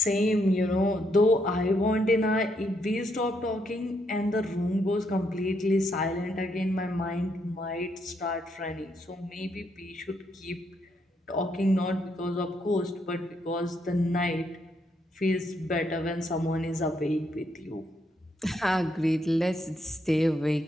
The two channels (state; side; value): normal; both; correlation 0.76